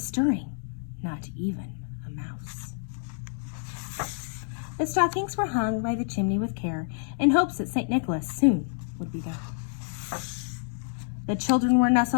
stirring, not even a mouse. The stockings were hung by the chimney with care, in hopes that St. Nicholas soon would be there. The children were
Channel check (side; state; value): right; silent; digital silence